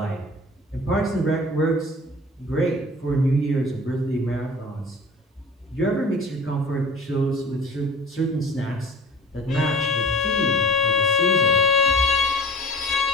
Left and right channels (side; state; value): both; normal; correlation 0.42